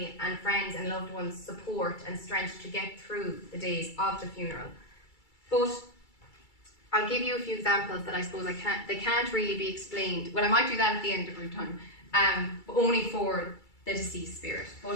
and friends and loved ones support and strength to get through the days of the funeral. But I'll give you a few examples that I suppose they can't really be explained. Well, I might do that at the end of our time, but only for the deceased spirit.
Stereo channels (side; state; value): right; late; 2.3 ms